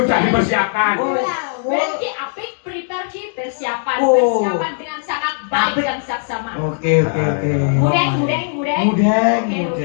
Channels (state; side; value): silent; right; digital silence